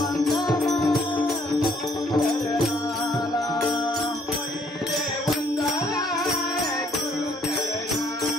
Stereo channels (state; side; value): normal; both; correlation 0.66